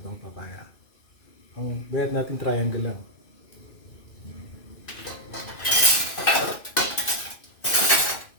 papaya. Ang gayat natin triangle lang.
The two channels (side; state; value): right; late; 2.6 ms